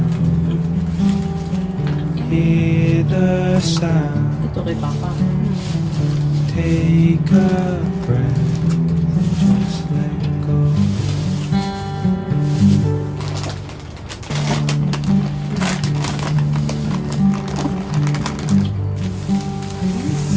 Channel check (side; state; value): both; identical; correlation 1.00